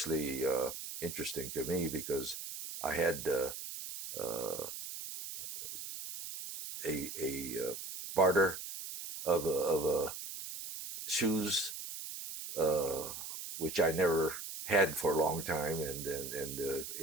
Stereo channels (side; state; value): right; noise; hiss, 8 dB below the sound